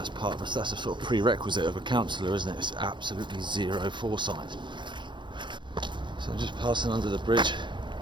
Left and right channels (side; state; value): left; late; 0.23 ms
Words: part of us. That's a sort of prerequisite of a councillor, isn't it? It's absolutely zero foresight. So I'm just passing under the bridge.